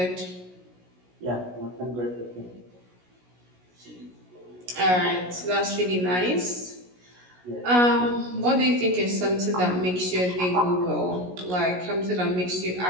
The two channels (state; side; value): late; left; 16 ms